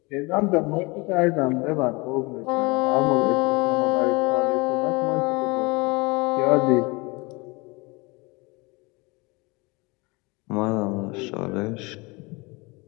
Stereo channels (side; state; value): right; quieter; 26.2 dB